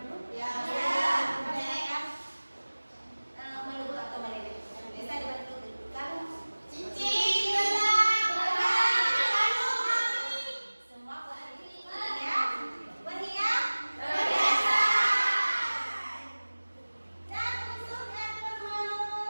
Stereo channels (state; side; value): inverted; both; correlation -1.00